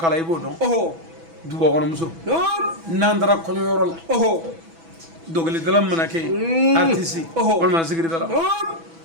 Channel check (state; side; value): late; left; 6.1 ms